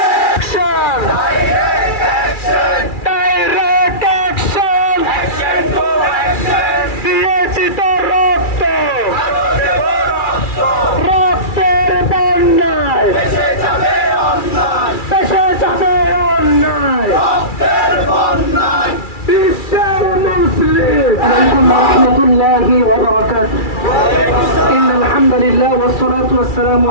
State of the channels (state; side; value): late; right; 2.3 ms